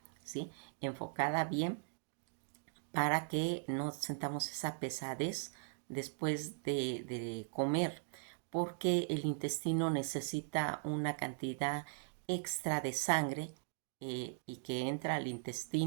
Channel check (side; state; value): left; silent; digital silence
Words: ¿sí? Enfocada bien para que no sentamos esa pesadez después de comer, porque el intestino necesita una cantidad extra de sangre y que entra al